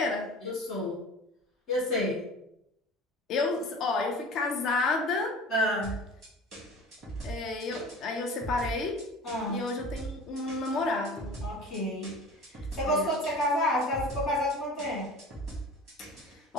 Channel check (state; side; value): normal; both; correlation 0.39